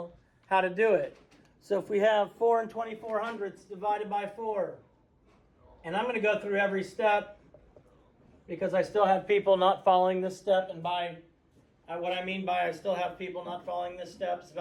how to do it. So if we have 4 and 24 hundredths divided by 4, and I'm going to go through every step because I still have people not following this step, and by what I mean by I still have people not following this step, it's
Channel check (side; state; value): both; identical; correlation 1.00